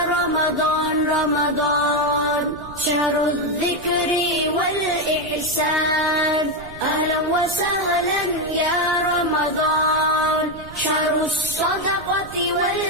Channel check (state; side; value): noise; right; rumble, 17 dB below the sound